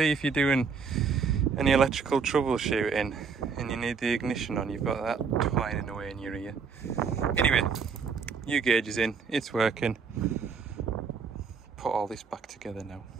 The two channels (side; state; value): left; quieter; 5.5 dB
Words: if you're doing any electrical troubleshooting and you need the ignition on, you've got that twining away in your ear. Anyway, new gauge is in, it's working. Put all this back together now.